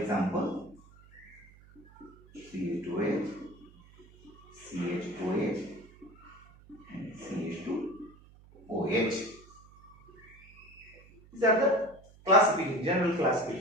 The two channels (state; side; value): noise; right; hum, 24 dB below the sound